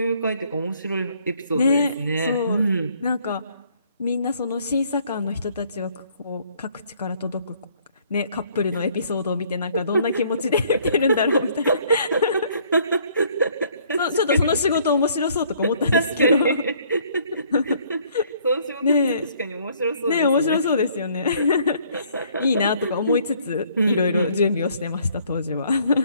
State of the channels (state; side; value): inverted; both; correlation -0.62